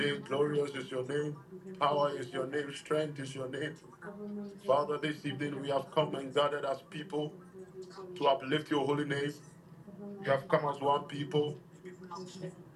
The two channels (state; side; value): identical; both; correlation 1.00